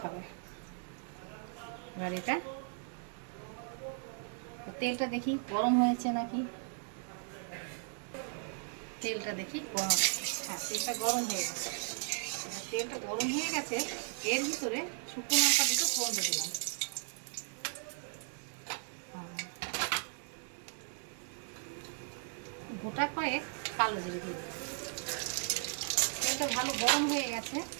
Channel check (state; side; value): silent; left; 53 dB below the other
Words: এবার এটা তেলটা দেখি গরম হয়েছে নাকি, তেলটা দেখি গরম, হ্যাঁ তেলটা গরম হয়ে গেছে। তেলটা গরম হয়ে গেছে, এর ভিতরে শুকনো লঙ্কা দুটো ফোড়ন দিয়ে দিলাম, গোটা কয়েক কালো জিরে দিয়ে দিলাম। তেলটা ভালো গরম হয়ে গেছে,